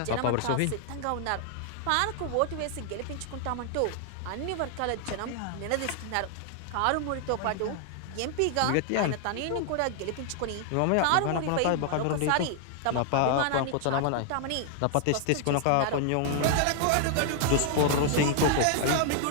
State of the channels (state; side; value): different; both; correlation 0.00